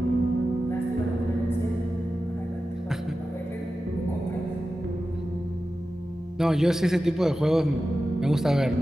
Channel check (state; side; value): normal; both; correlation 0.93